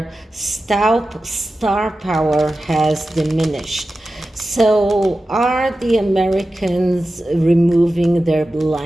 star power has diminished. So are the Americans removing their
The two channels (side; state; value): both; normal; correlation 0.93